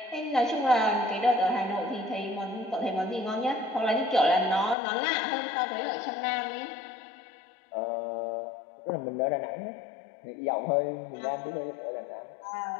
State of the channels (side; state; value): right; drops out; at 4.8 s